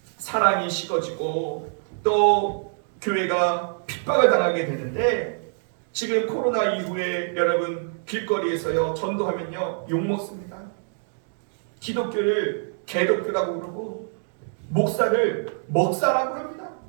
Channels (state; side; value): silent; left; digital silence